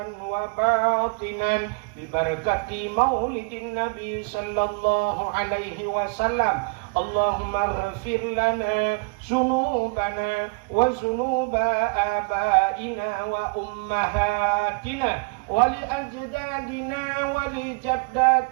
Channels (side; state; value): left; quieter; 32.4 dB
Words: wa batinan bi barakati maulidin nabi sallallahu alaihi wasallam. Allahumma ighfir lana dzunubana wa dzunuba abaina wa ummahatina wa li ajdadina wa li